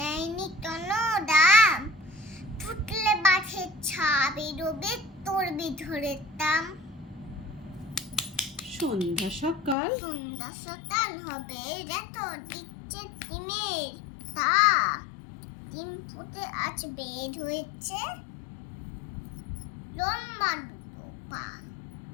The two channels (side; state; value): right; drops out; at 9.8 s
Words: কোনো দাম, ফুটলে বাঘে ছা বেরোবে তোর বিধরের দাম। সন্ধ্যা সকাল হবে যত দিচ্ছে ডিমের তা, ডিম ফুটে আজ বের হয়েছে লম্বা দুটো পা।